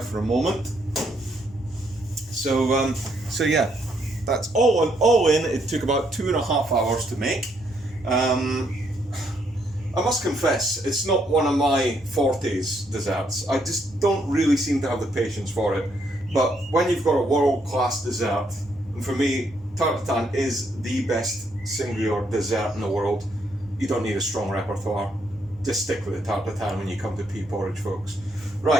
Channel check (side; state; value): both; normal; correlation 0.73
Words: a moment. So yeah, that's all in. It took about 2.5 hours to make. I must confess, it's not one of my fortes desserts. I just don't really seem to have the patience for it. But when you've got a world-class dessert, and for me, tarte tatin is the best singular dessert in the world. You don't need a strong repertoire. Just stick with the tarte tatin when you come to pea porridge, folks.